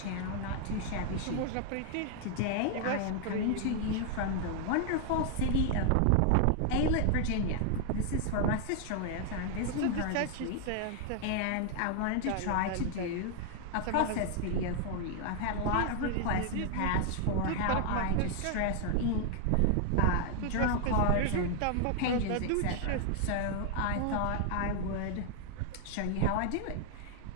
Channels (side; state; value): both; different; correlation 0.00